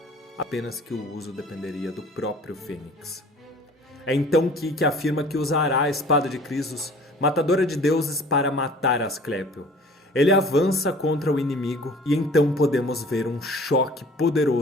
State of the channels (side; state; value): both; normal; correlation 0.48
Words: apenas que o uso dependeria do próprio Fênix. É então que Ikki afirma que usará a espada de Krisos, matadora de deuses, para matar Asclépio. Ele avança contra o inimigo e então podemos ver um choque